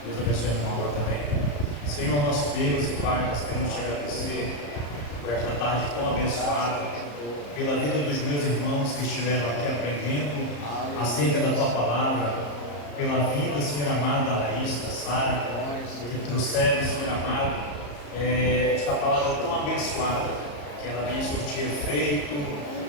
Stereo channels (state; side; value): late; right; 34 ms